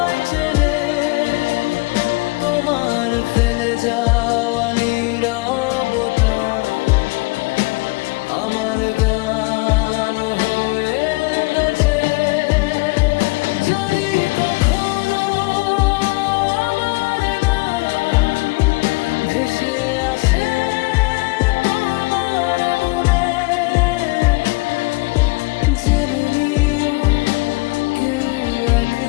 চেনে। তোমার ফেলে যাওয়া নীরবতা আমার গান হয়ে বেঁচে। যদি কখনো আমার নাম ভেসে আসে তোমার মনে, জেনে নিও কেউ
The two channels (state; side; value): quieter; right; 25.4 dB